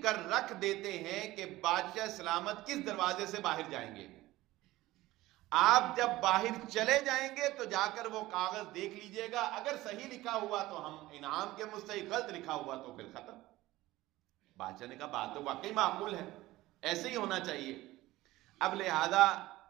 کر رکھ دیتے ہیں کہ بادشاہ سلامت کس دروازے سے باہر جائیں گے، آپ جب باہر چلے جائیں گے تو جا کر وہ کاغذ دیکھ لیجئے گا، اگر صحیح لکھا ہوا تو ہم انعام کے مستحق، غلط لکھا ہوا تو پھر ختم۔ بادشاہ نے کہا بات تو واقعی معقول ہے، ایسے ہی ہونا چاہیے۔ اب لہذا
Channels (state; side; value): quieter; left; 17.6 dB